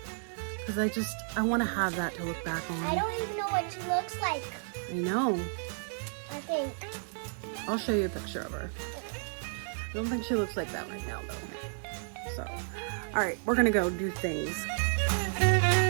because I want to have that to look back on. I don't even know what she looks like. I know. I think. I'll show you a picture of her. I don't think she looks like that right now though. So, all right, we're gonna go do things.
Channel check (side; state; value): left; silent; digital silence